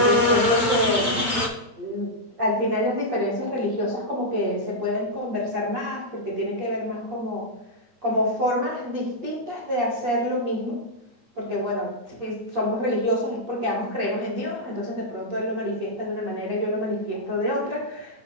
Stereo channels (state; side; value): late; left; 8.9 ms